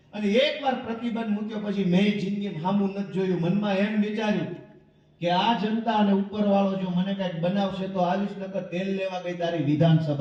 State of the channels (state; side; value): identical; both; correlation 1.00